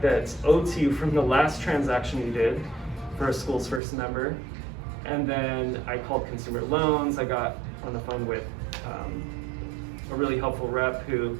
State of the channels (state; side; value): drops out; left; at 3.8 s